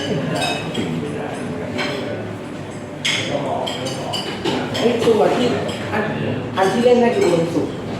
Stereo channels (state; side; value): identical; both; correlation 1.00